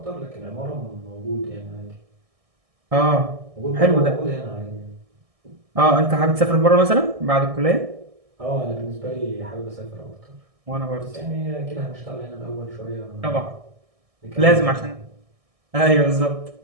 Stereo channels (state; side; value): late; left; 1.6 ms